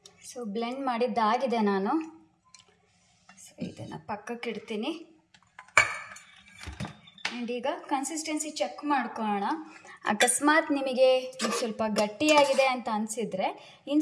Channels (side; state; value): both; identical; correlation 1.00